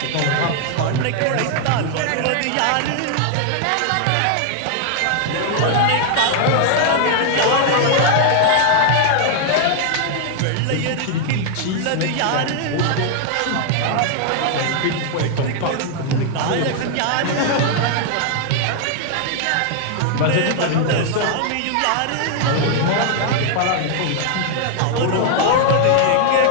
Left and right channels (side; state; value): both; different; correlation 0.00